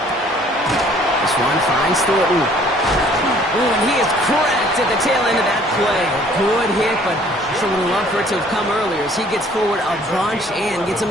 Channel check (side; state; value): both; normal; correlation 0.57